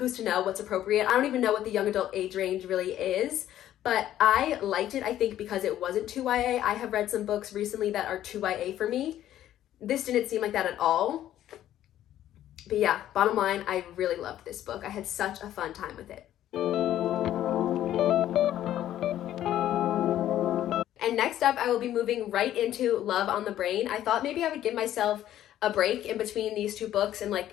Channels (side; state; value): right; quieter; 12.3 dB